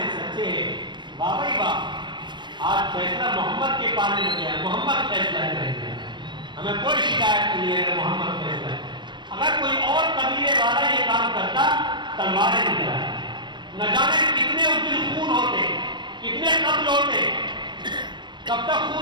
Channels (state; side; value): late; left; 0.22 ms